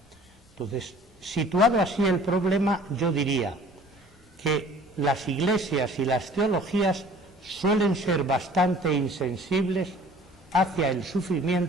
Entonces, situado así el problema, yo diría que las iglesias y las teologías suelen ser bastante insensibles hacia el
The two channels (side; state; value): both; normal; correlation 0.50